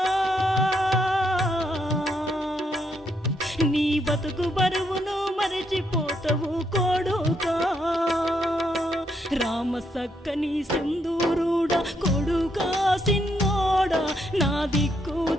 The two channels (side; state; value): both; normal; correlation 0.76